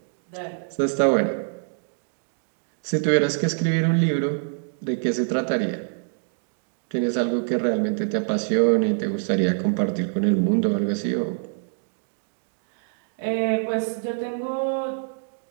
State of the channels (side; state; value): left; silent; digital silence